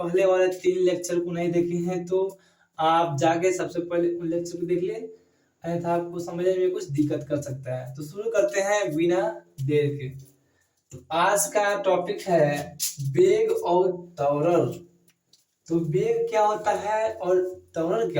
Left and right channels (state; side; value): identical; both; correlation 1.00